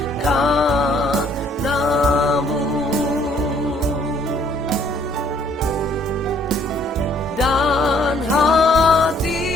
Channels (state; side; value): normal; both; correlation 0.63